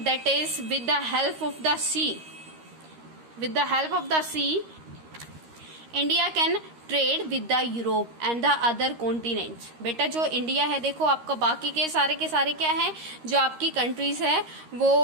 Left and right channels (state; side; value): late; left; 13 ms